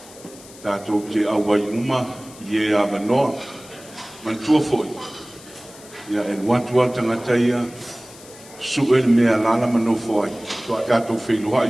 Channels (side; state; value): left; noise; hiss, 20 dB below the sound